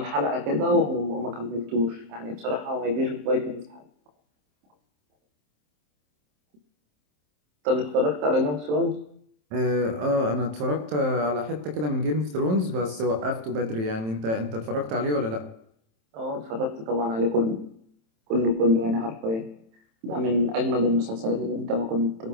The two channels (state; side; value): late; left; 27 ms